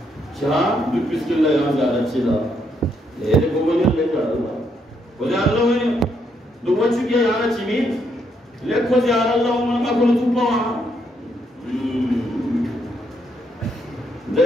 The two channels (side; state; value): both; normal; correlation 0.75